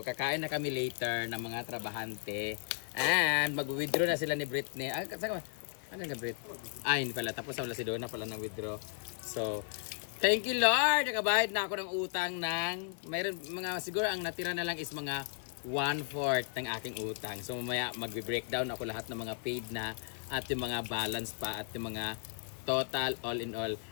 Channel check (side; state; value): right; silent; 54 dB below the other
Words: kakain na kami later ng mga trabahante. And mag-withdraw na sila ni Britney. Ano nga Brit? Hindi pala. Tapos wala si Donna pala ng withdraw. So, thank you Lord. Nakabayad na ako ng utang ng mayroon mga siguro ang natira na lang is mga 1/4 ng aking utang. So mamaya magbe-breakdown ako lahat ng mga paid na at yung mga balance pa at yung mga total all in all.